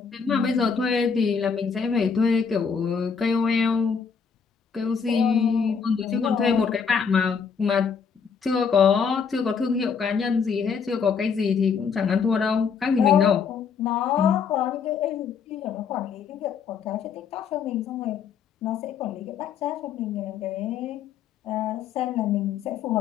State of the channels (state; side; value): quieter; right; 6.2 dB